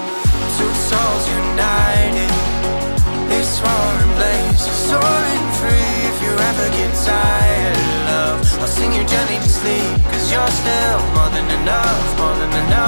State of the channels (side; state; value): both; inverted; correlation -1.00